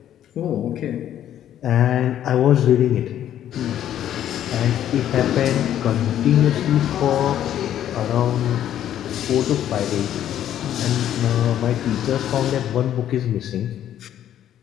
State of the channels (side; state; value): right; quieter; 11.1 dB